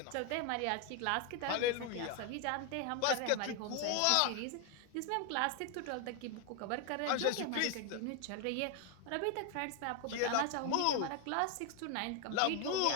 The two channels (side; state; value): both; different; correlation 0.01